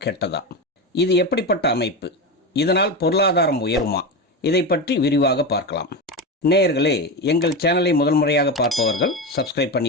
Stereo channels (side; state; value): both; normal; correlation 0.18